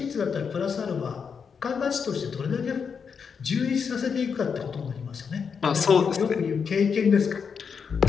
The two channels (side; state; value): right; quieter; 6.2 dB